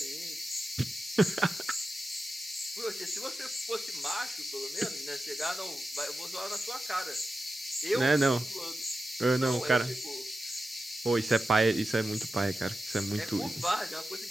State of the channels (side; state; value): both; normal; correlation 0.92